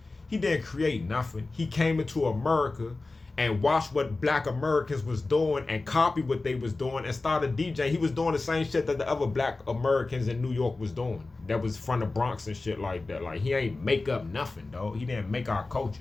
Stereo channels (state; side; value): quieter; right; 3.4 dB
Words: he didn't create nothing. He came into America and watched what black Americans was doing and copied what they was doing and started DJing. He was doing the same shit that the other black Americans in New York was doing. That was from the Bronx and shit like that. Like, he ain't make up nothing, dog. He didn't make our culture.